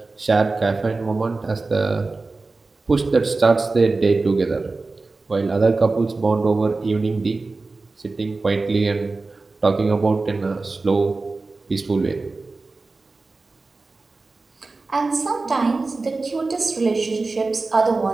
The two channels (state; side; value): quieter; left; 3.6 dB